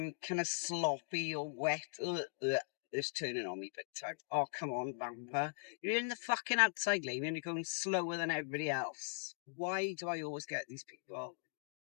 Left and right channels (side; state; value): right; silent; digital silence